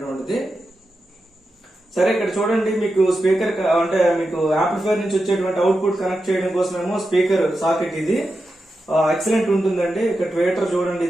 సరే ఇక్కడ చూడండి, మీకు స్పీకర్ అంటే మీకు యాంప్లిఫైర్ నుంచి వచ్చేటువంటి అవుట్పుట్ కనెక్ట్ చేయడం కోసమేమో స్పీకర్ సాకెట్ ఇది ఎక్సలెంట్ ఉంటుందండి. ఇక్కడ ట్వేటర్ చూడండి,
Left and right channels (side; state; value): both; normal; correlation 0.89